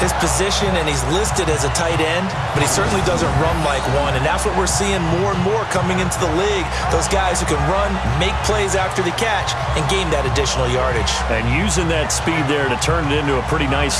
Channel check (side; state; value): both; identical; correlation 1.00